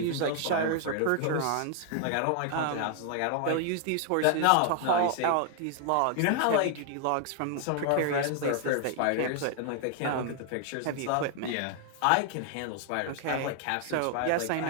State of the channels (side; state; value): both; different; correlation 0.00